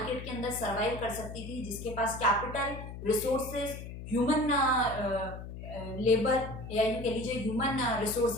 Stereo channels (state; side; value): noise; left; hum, 10 dB below the sound